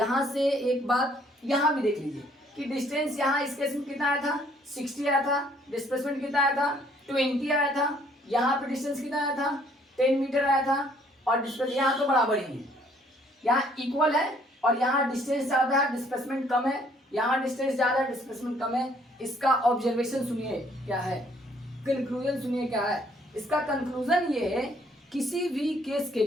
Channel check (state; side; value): normal; both; correlation 0.63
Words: से एक बात यहाँ भी देख लीजिए कि डिस्टेंस यहाँ इस केस में कितना आया था 60 आया था, डिस्प्लेसमेंट कितना आया था 20 आया था। यहाँ पे डिस्टेंस कितना आया था 10 मीटर आया था और डिस्प्लेस यहाँ तो बराबर ही है, यहाँ इक्वल है और यहाँ डिस्टेंस ज़्यादा है डिस्प्लेसमेंट कम है, यहाँ डिस्टेंस ज़्यादा है डिस्प्लेसमेंट कम है। इसका ऑब्जर्वेशन सुनिए क्या है, कंक्लूजन सुनिए क्या है। इसका कंक्लूजन ये है किसी भी केस के